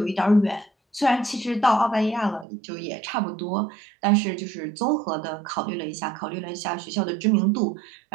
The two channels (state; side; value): drops out; left; at 2.5 s